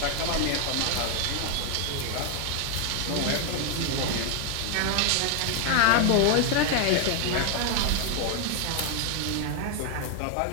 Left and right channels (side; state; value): both; different; correlation 0.00